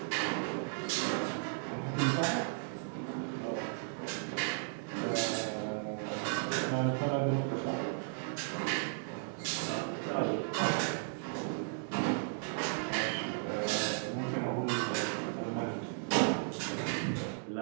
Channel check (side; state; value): left; silent; digital silence